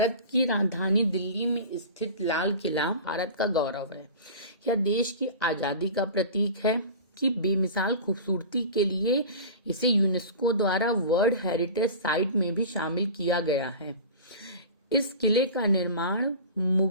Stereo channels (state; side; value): inverted; both; correlation -0.35